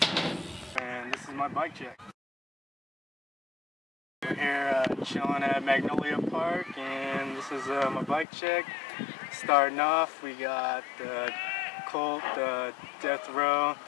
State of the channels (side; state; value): right; drops out; at 8.2 s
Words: and this is my bike check. We're here chilling at Magnolia Park, and this is my bike check. Starting off, we got the Colt Death Row.